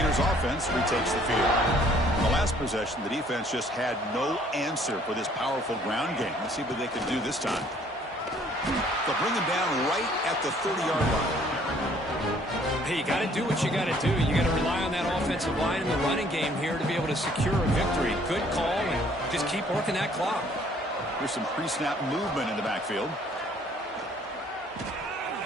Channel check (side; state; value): both; normal; correlation 0.60